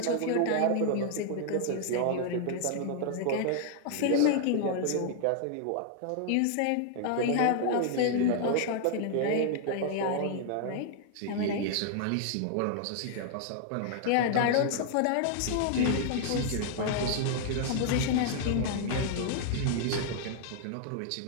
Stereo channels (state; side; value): different; both; correlation -0.01